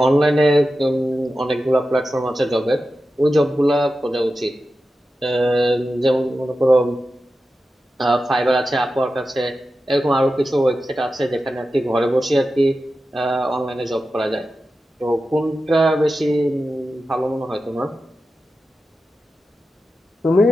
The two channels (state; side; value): normal; both; correlation 0.92